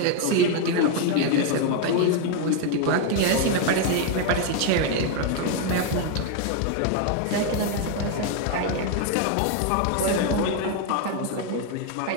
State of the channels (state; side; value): different; both; correlation 0.00